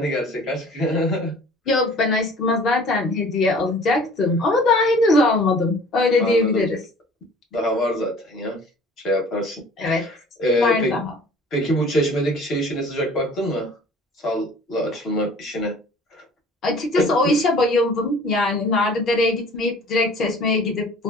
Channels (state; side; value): normal; both; correlation 0.49